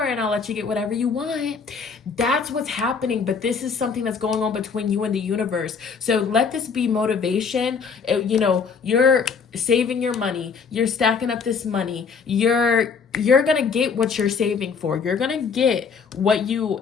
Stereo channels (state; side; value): quieter; right; 5.7 dB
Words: and I'll let you get whatever you want. That's what's happening. But this is something that's going on between you and the universe. So let this be motivation. You know, you're saving your money, you're stacking up this money, you're gonna get what you're saving for, you're gonna get what you